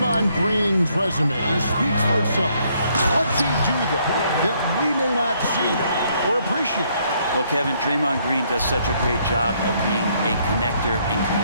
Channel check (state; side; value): inverted; both; correlation -0.69